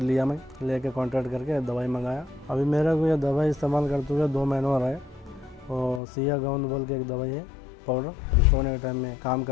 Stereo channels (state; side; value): drops out; right; at 6.0 s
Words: लिया, मैं लेके कॉन्टैक्ट करके दवाई मंगाया। अभी मेरे को ये दवाई इस्तेमाल करते हुए 2 महीने हो रहे हैं। और सिया गाउन बोल के एक दवाई है, पाउडर। अभी सोने के टाइम में, काम